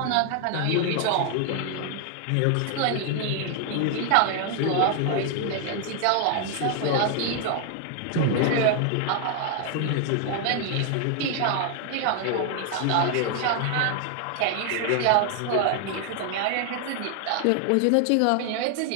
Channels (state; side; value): different; both; correlation 0.00